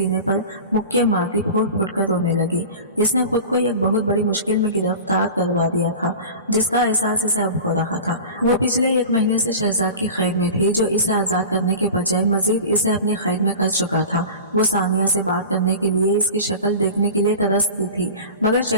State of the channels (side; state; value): both; inverted; correlation -0.34